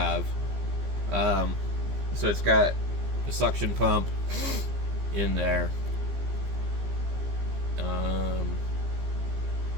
So it's got a suction pump in there.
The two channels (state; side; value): late; left; 15 ms